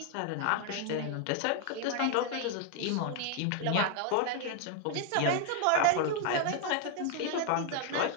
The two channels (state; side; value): different; both; correlation 0.00